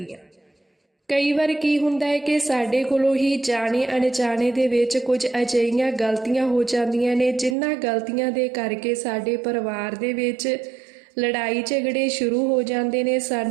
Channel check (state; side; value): drops out; left; at 7.6 s